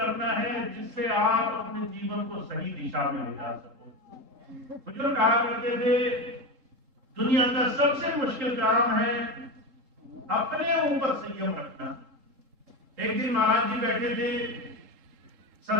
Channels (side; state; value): left; late; 3.7 ms